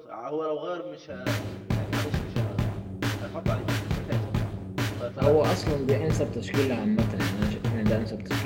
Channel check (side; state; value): both; identical; correlation 1.00